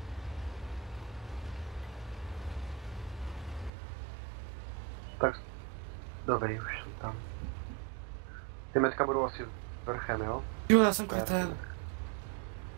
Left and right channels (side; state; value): left; drops out; at 3.7 s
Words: Tak, dobrý, už jsem tam. Ty metka budou asi vrchem, jo? Jo, já jsem kretén.